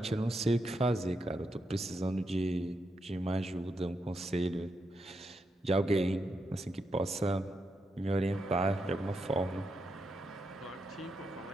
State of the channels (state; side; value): normal; both; correlation 0.83